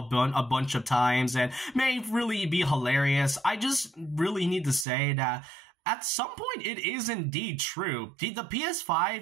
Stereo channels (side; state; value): left; drops out; at 4.9 s